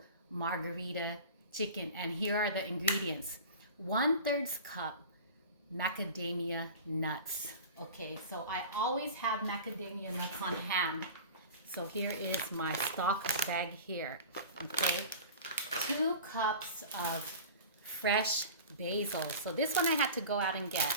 margherita chicken. And here are the ingredients: 1/3 cup macadamia nuts. Okay, so I always have macadamia nuts on hand. So here is my stock bag here. Okay, 2 cups of fresh basil. So this one I had to go out and get.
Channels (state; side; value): inverted; both; correlation -0.36